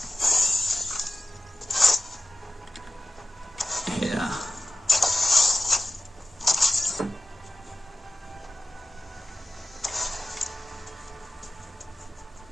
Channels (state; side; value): normal; both; correlation 0.95